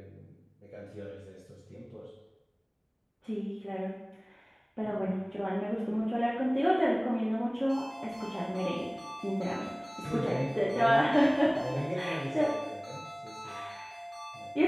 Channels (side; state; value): both; identical; correlation 1.00